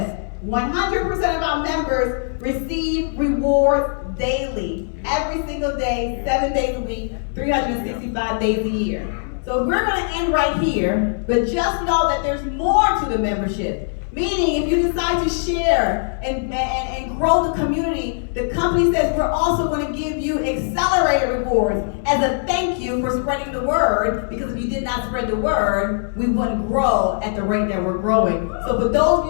100% of our members receive rewards daily, every single day, 7 days a week, 365 days a year. So we're going to end right here, but just know that there's more to the membership. Meaning, if you decide to share and grow the community, the company says we're also going to give you accelerated rewards as a thank you for spreading the word, because if you did not spread the word, we wouldn't grow at the rate that we're growing. So for those of you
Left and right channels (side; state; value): right; silent; 65 dB below the other